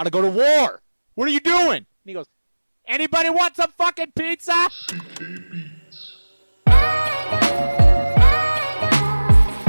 to go to war. What are you doing?" And he goes, "Anybody want some fucking pizza?"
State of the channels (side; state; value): both; inverted; correlation -1.00